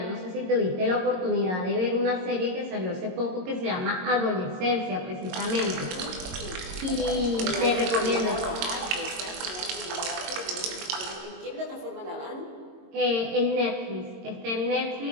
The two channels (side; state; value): left; late; 22 ms